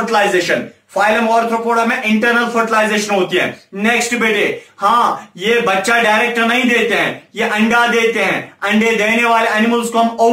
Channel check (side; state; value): both; identical; correlation 1.00